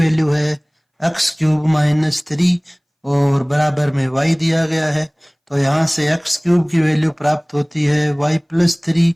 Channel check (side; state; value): both; identical; correlation 1.00